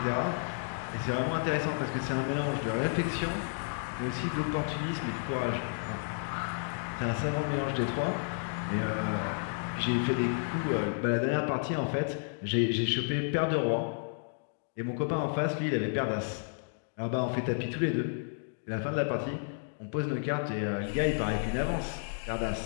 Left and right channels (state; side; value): silent; right; digital silence